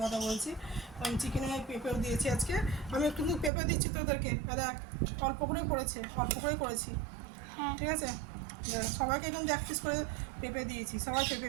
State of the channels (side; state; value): left; drops out; at 3.5 s